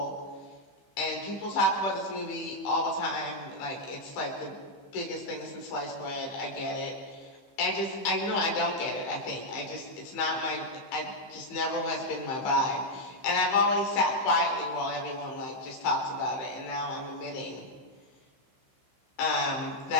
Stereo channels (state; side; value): late; right; 15 ms